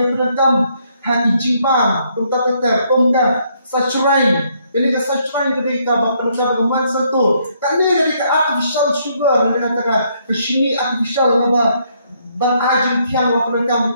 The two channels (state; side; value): inverted; both; correlation -0.71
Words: penerkam hati jimbang, nukta kata, kongka, sacurai, ini ke sacurai kita penerkam keman satu, karena ini ke artificial sugar, ini kata ke sini artificial apa? Ban ajin tiang wa